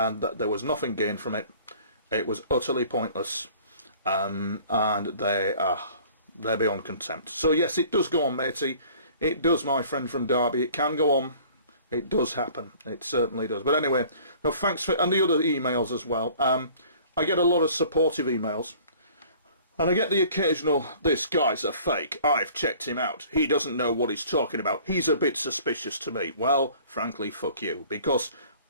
there was nothing gained from it. It was utterly pointless. And they're beyond contempt. So yes, it does go on, matey. It does, my friend from Derby. It can go on. It does happen. It certainly does. But anyway, no, thanks for... And the other emails as well. I get a lot of supportive emails. And I get the occasional, this guy's a fake. I've checked him out. He doesn't know what he's talking about. He's a bit suspicious to me. Well, frankly, fuck you. Because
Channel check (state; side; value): inverted; both; correlation -0.50